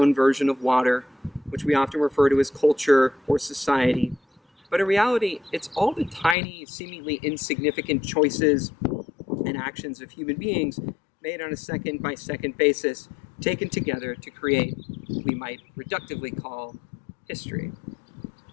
version of water, which we often refer to as culture or society. But in reality, it's all the tiny, seemingly insignificant choices interactions of human beings made on a second-by-second basis, taken together to create what we might reductively call history.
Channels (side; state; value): right; drops out; at 6.4 s